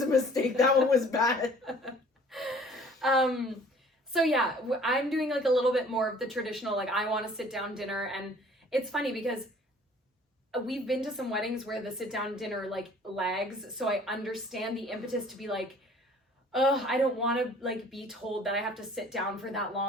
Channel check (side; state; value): both; normal; correlation 0.52